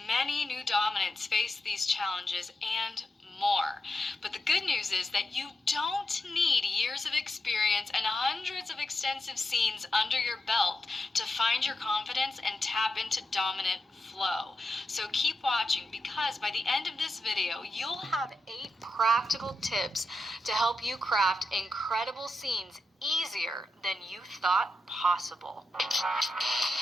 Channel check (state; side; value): normal; both; correlation 0.88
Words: Many new dominants face these challenges and more. But the good news is that you don't need years of experience and hundreds of extensive scenes under your belt to find your confidence and tap into dominant flow. So keep watching, because by the end of this video, you'll have 8 practical tips to help you craft incredible scenes easier than you thought possible.